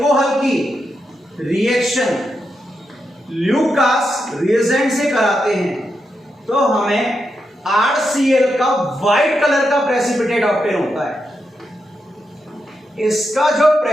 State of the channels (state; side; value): normal; both; correlation 0.85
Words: की रिएक्शन ल्यूकास रिएजेंट से कराते हैं तो हमें RCl का व्हाइट कलर का प्रेसिपिटेट ऑब्टेन होता है। इसका जो